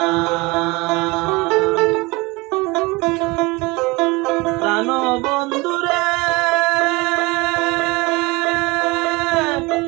প্রাণ বন্ধু রে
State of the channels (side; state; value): left; quieter; 24.2 dB